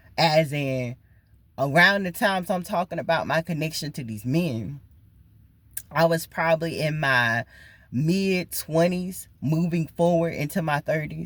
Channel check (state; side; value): identical; both; correlation 1.00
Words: As in, around the times I'm talking about my connection to these men, I was probably in my mid-20s, moving forward into my